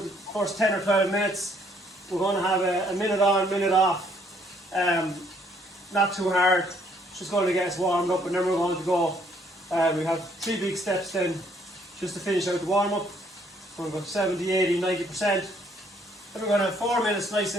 the first 10 or 12 minutes. We're going to have a minute on, minute off. Not too hard, just going to get us warmed up, and then we're going to go. We have 3 big steps then, just to finish out the warm up. We're going to go 70, 80, 90%. Then we're going to have 4 minutes nice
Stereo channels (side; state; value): both; normal; correlation 0.66